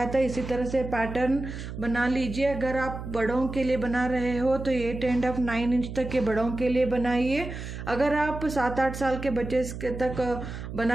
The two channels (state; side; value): noise; right; hum, 8 dB below the sound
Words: था इसी तरह से पैटर्न बना लीजिए। अगर आप बड़ों के लिए बना रहे हो तो 8 and 9 इंच तक के बड़ों के लिए बनाइए। अगर आप 7-8 साल के बच्चे तक